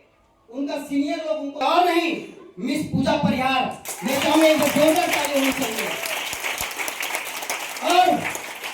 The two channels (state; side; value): identical; both; correlation 1.00